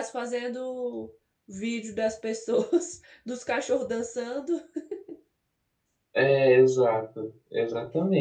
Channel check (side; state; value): both; identical; correlation 1.00